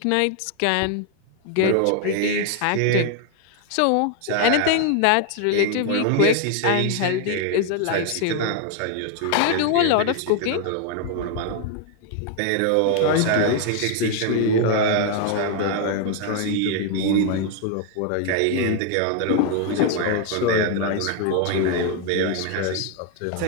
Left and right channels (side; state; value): both; different; correlation 0.00